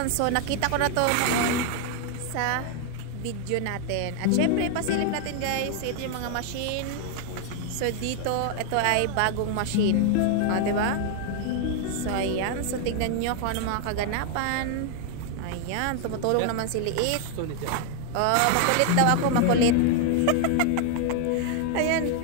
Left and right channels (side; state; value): both; different; correlation 0.00